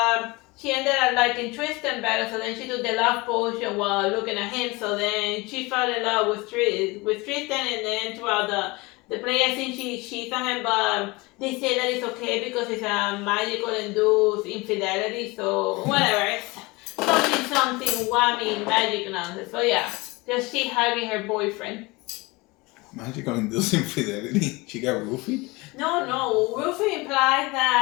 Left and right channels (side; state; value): right; quieter; 24.0 dB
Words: she ended up liking Tristan better, so then she took the love potion while looking at him. So then she fell in love with Tristan, and then throughout the play, I think she saw him, but they say that it's okay because it's a magical induced infidelity. So whatever. Something whammy magic nonsense. So yeah, just she hugging her boyfriend. Magical induced infidelity. She got roofied? No. Roofing implies